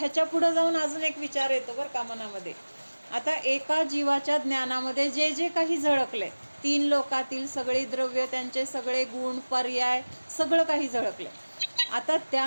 पुढं जाऊन अजून एक विचार येतो बरं का मनामध्ये. आता एका जीवाच्या ज्ञानामध्ये जे जे काही झळकले, तीन लोकातील सगळी द्रव्य, त्यांचे सगळे गुण, पर्याय, सगळं काही झळकले. आता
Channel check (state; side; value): inverted; both; correlation -1.00